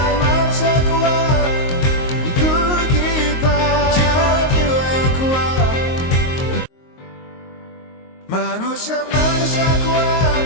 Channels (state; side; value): late; right; 22 ms